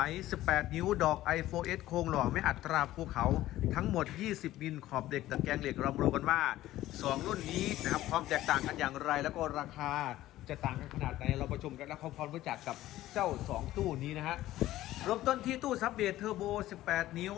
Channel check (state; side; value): quieter; right; 15.0 dB